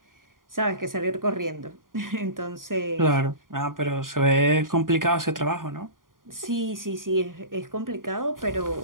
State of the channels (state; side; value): late; left; 0.90 ms